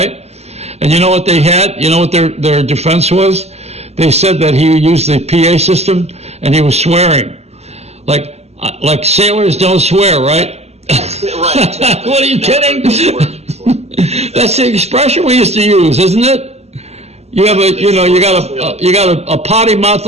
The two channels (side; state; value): left; late; 0.31 ms